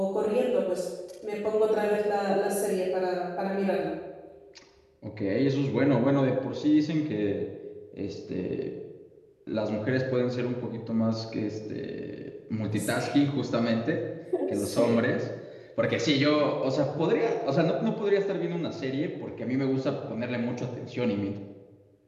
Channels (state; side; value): identical; both; correlation 1.00